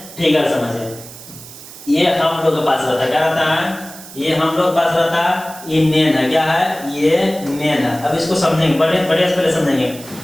फिगर समझिए। ये हम लोग के पास रहता है, क्या रहता है? ये हम लोग पास रहता है, ये मेन है। क्या है? ये मेन है। अब इसको समझेंगे, बड़े से पहले समझेंगे।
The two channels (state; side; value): noise; right; hiss, 16 dB below the sound